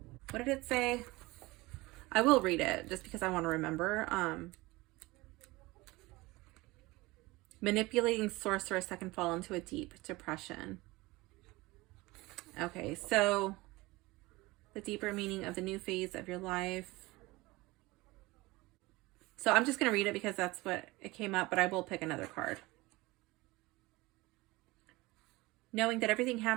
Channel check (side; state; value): left; quieter; 21.5 dB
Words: What did it say? I will read it just because I want to remember. Manipulating sorceress that can fall into a deep depression. Okay, so the deeper meaning of the new phase of your life. So I'm just going to read it because that's what it came up, but I will pick another card. Knowing that everything